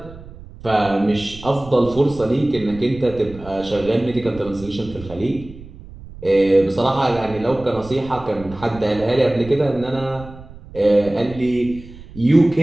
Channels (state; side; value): noise; right; rumble, 17 dB below the sound